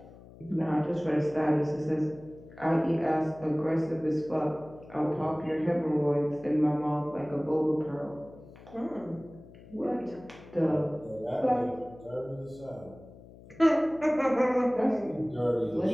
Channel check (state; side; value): noise; left; hum, 20 dB below the sound